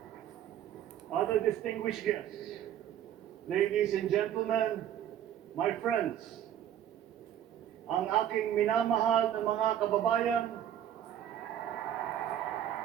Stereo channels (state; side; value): quieter; left; 10.6 dB